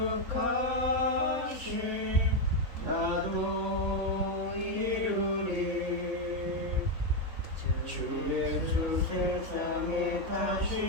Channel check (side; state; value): left; late; 3.9 ms